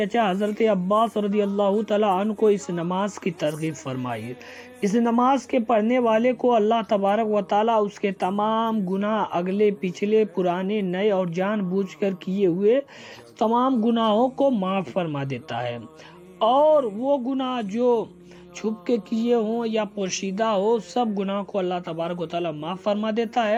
حضرت عباس رضی اللہ تعالیٰ عنہ کو اس نماز کی ترغیب فرمائی۔ اس نماز کے پڑھنے والے کو اللہ تبارک و تعالیٰ اس کے تمام گناہ، اگلے پچھلے پرانے نئے اور جان بوجھ کر کیے ہوئے تمام گناہوں کو معاف فرما دیتا ہے، اور وہ گناہ جو چھپ کے کیے ہوں یا پوشیدہ ہو سب گناہ کو اللہ تبارک و تعالیٰ معاف فرما دیتا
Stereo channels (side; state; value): both; identical; correlation 1.00